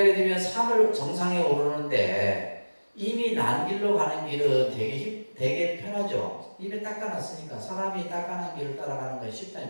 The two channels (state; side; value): inverted; both; correlation -1.00